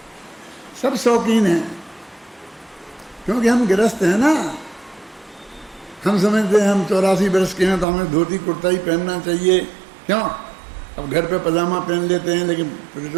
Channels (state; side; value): drops out; left; at 7.9 s